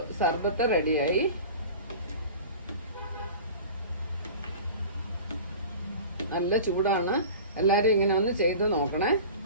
സർബത്ത് റെഡിയായി. നല്ല ചൂടാണ്. എല്ലാവരും ഇങ്ങനെ ഒന്ന് ചെയ്ത് നോക്കണേ.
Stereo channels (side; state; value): both; inverted; correlation -0.38